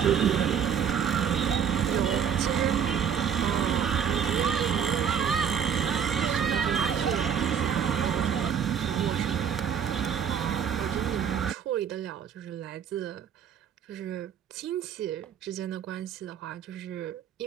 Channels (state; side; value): quieter; left; 7.9 dB